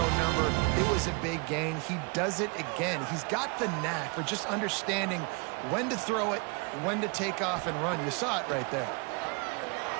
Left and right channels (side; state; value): left; quieter; 31.7 dB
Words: number, it was a big gain. He does it again. He's got the knack for just understanding when to throw it, when to take off and run. You saw it right there.